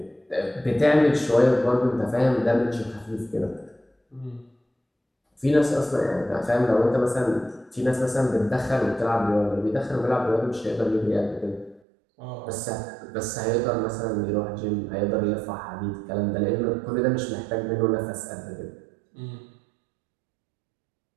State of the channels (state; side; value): drops out; left; at 11.8 s